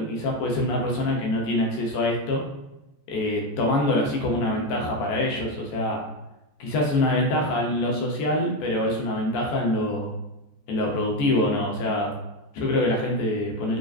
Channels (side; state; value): right; late; 14 ms